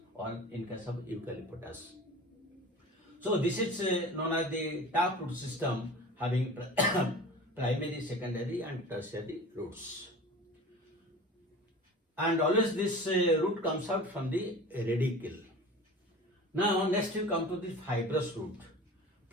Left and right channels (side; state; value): both; normal; correlation 0.38